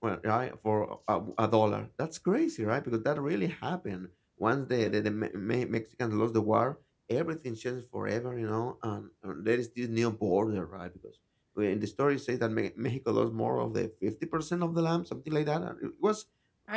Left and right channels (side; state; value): both; identical; correlation 1.00